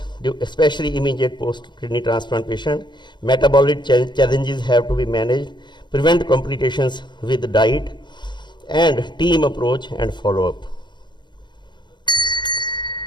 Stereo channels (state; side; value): late; right; 0.22 ms